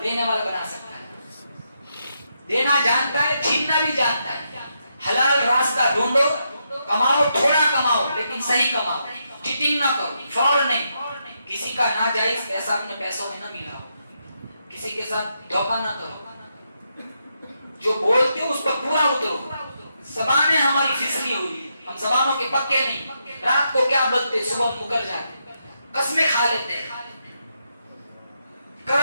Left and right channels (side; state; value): both; inverted; correlation -0.81